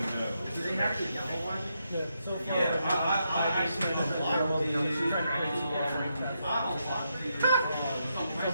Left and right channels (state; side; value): inverted; both; correlation -0.82